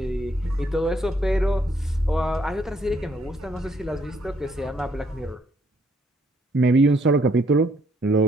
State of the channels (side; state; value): both; normal; correlation 0.69